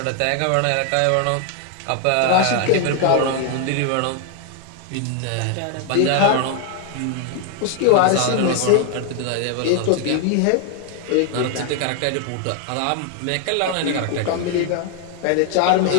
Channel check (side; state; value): both; different; correlation 0.00